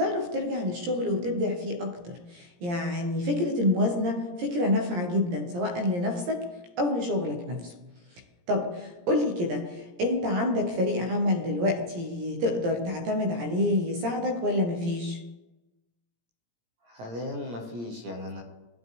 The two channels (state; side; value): late; left; 17 ms